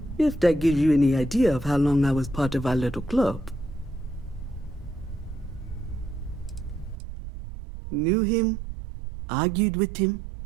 if that gives you any idea of how long I was part of our little club. Knew him, argued with him,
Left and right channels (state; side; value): drops out; left; at 7.0 s